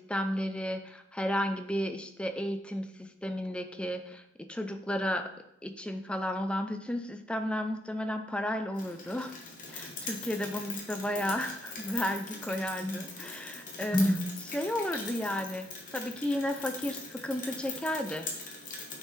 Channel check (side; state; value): both; normal; correlation 0.80